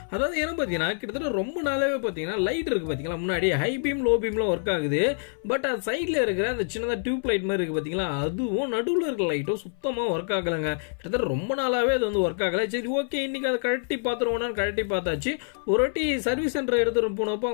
அதாவது என்ன பார்த்தீங்கன்னா கிட்டத்தட்ட ரொம்ப நாளாகவே பார்த்தீங்கன்னா லைட் இருக்குது பார்த்தீங்களா, முன்னாடி ஹை பீம் லோ பீம்லாம் ஒர்க் ஆகுது. பட் அது சைடில் இருக்கிற அந்த சின்னதாக டியூப் லைட் மாதிரி இருக்குது பார்த்தீங்களா, அதுவும் நடுவில் இருக்கிற லைட்டும் சுத்தமாக ஒர்க் ஆகலைங்க. கிட்டத்தட்ட ரொம்ப நாளாகவே அது வந்து ஒர்க் ஆகலை. சரி ஓகே, இன்றைக்கி அதை கழட்டி பார்த்துருவோம்னா கழட்டி பார்த்தாச்சு. ஒரு வாட்டி சர்வீஸ் சென்டர் எடுத்துகிட்டு போனப்போ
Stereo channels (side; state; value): right; silent; 61 dB below the other